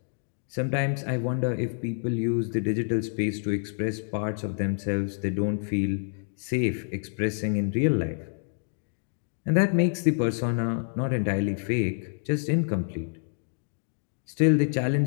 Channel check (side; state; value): right; silent; 60 dB below the other